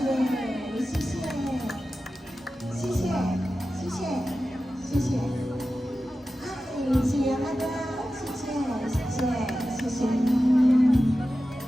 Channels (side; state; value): both; normal; correlation 0.94